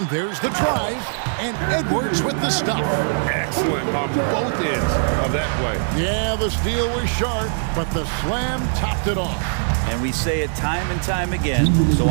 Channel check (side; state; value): left; silent; 65 dB below the other